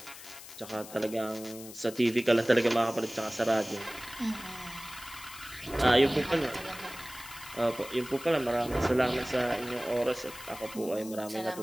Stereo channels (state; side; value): noise; left; hiss, 15 dB below the sound